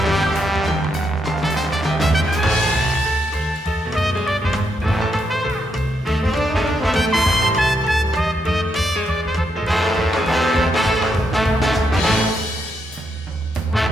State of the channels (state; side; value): normal; both; correlation 0.79